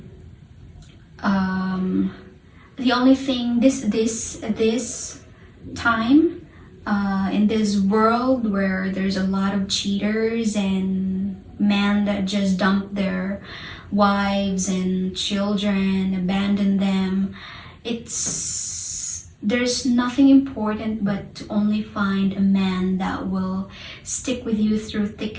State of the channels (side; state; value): both; identical; correlation 1.00